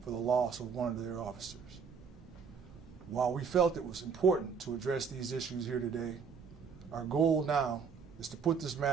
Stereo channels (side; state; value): left; quieter; 6.0 dB